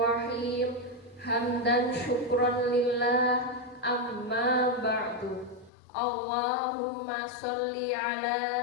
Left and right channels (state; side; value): drops out; right; at 5.7 s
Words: Hamdan syukran lillah, amma ba'du. Allahumma sholli